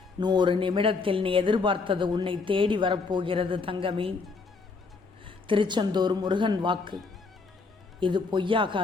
100 நிமிடத்தில் நீ எதிர்பார்த்தது உன்னை தேடி வரப்போகிறது தங்கமே. திருச்செந்தூர் முருகன் வாக்கு இது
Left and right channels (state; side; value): quieter; right; 4.4 dB